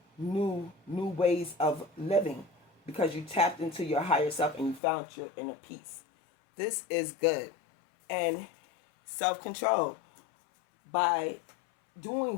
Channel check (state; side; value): drops out; right; at 4.8 s